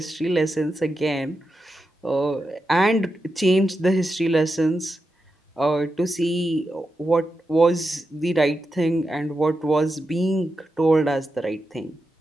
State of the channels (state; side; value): normal; both; correlation 0.88